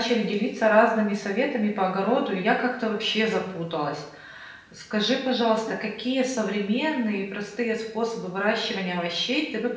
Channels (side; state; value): both; identical; correlation 1.00